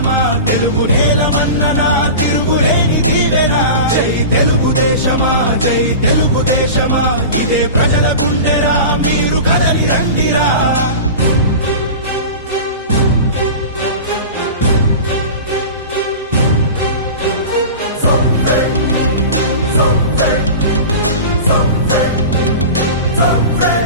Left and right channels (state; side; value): inverted; both; correlation -0.32